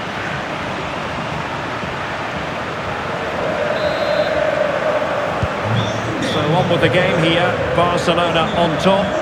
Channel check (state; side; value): identical; both; correlation 1.00